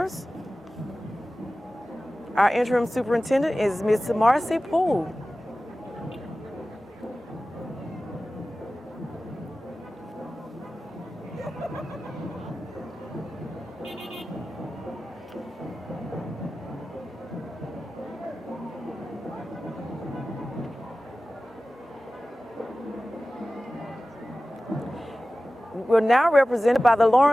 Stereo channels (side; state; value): both; normal; correlation 0.96